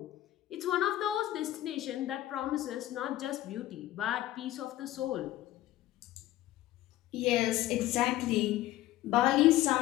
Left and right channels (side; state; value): right; quieter; 15.0 dB